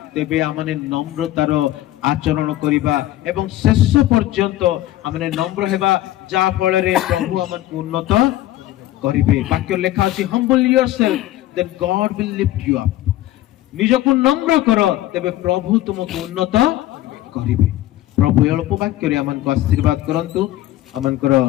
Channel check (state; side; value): quieter; right; 14.9 dB